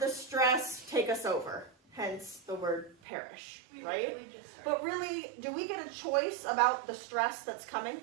stress take us over. Hence the word perish, right? But really, do we get a choice about the stress that's coming?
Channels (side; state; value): left; drops out; at 3.0 s